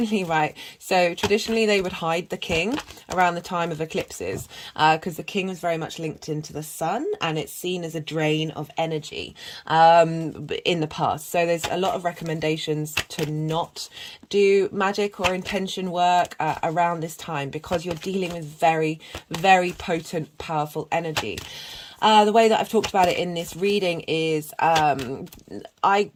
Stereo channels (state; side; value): identical; both; correlation 1.00